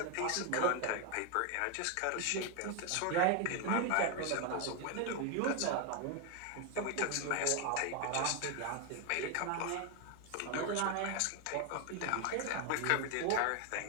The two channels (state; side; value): different; both; correlation 0.01